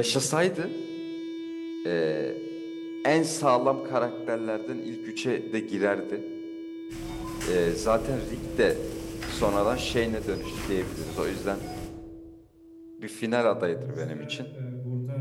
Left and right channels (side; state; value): both; identical; correlation 1.00